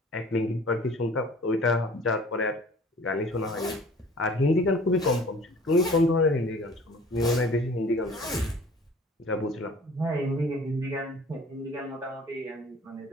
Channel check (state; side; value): normal; both; correlation 0.49